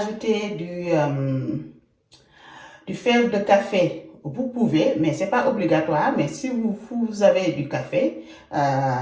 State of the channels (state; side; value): identical; both; correlation 1.00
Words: du fève de café, vous pouvez, mais ce n'est pas obligatoire. Mais si vous avez du café,